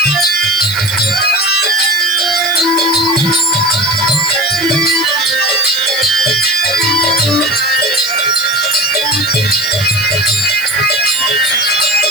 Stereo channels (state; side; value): noise; left; hiss, 11 dB below the sound